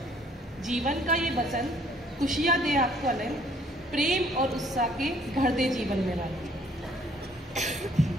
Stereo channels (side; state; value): both; normal; correlation 0.61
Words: जीवन का ये बसंत खुशियाँ दे आपको आनंद, प्रेम और उत्साह के भर दे जीवन में रंग।